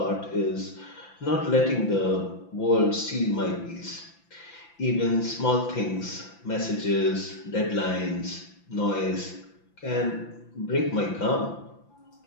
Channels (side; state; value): right; late; 5.9 ms